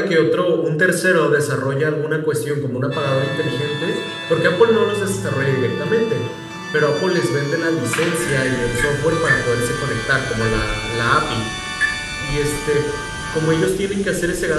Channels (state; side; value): identical; both; correlation 1.00